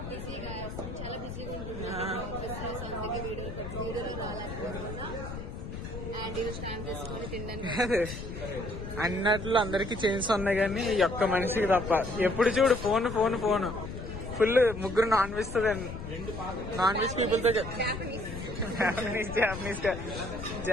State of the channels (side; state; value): left; noise; rumble, 8 dB below the sound